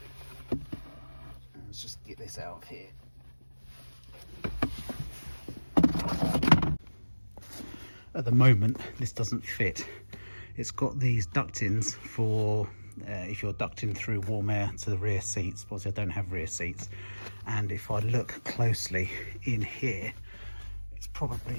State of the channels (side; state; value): both; inverted; correlation -1.00